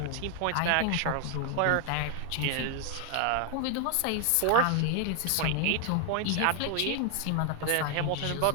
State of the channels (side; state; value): both; different; correlation 0.01